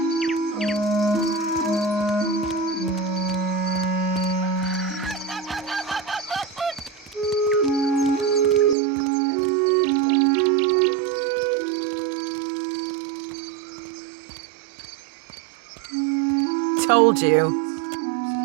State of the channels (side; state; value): left; drops out; at 8.8 s